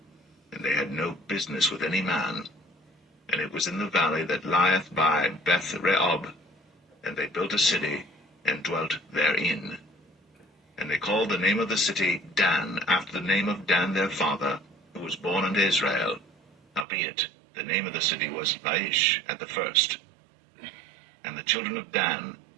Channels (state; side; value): drops out; left; at 16.9 s